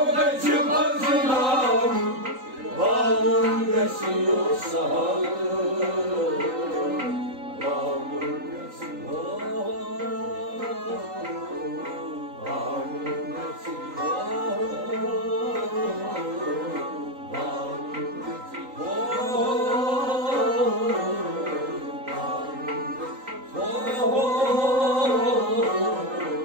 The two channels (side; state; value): left; late; 3.8 ms